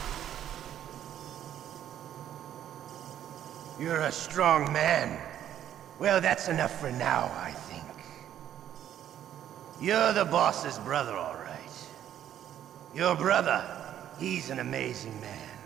You're a strong man. Well, that's enough for now, I think. You're the boss's brother, all right. Your brother, he's an amazing man.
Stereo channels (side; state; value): left; quieter; 10.8 dB